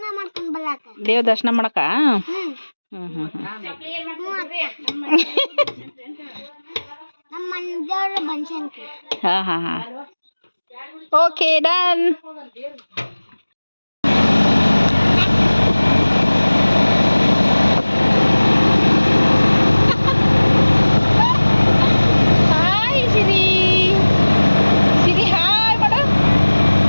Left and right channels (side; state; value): both; inverted; correlation -1.00